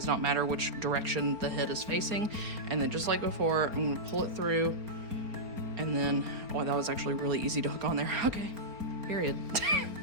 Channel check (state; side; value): late; left; 4.4 ms